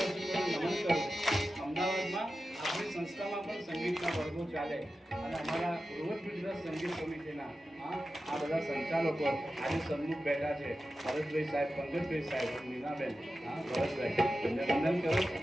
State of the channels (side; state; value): both; normal; correlation 0.93